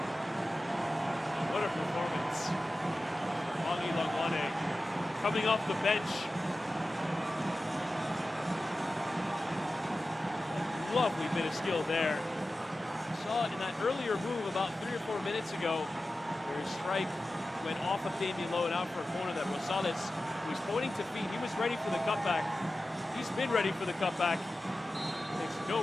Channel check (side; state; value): both; normal; correlation 0.94